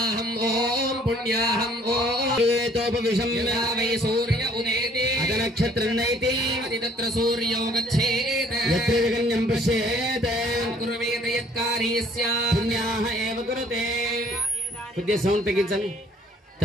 पुण्याहं ओम एतोपविशम्य वै सूर्य उदेति अदनक्षत्रनैति तत्र सूर्यो गच्छेत् यत्र जगन्यं पश्येत् कुर्वेत यत्कारी स्यात् पुण्याः एव कुरुते पुद्य सौंड तगिंचनि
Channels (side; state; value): both; normal; correlation 0.58